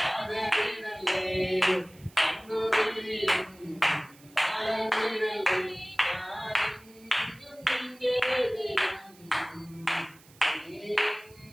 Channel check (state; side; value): noise; right; hiss, 25 dB below the sound